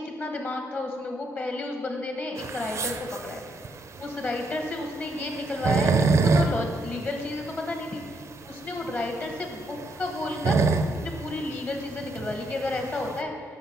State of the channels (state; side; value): normal; both; correlation 0.75